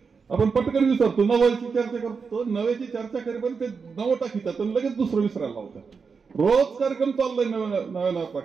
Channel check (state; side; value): quieter; left; 5.4 dB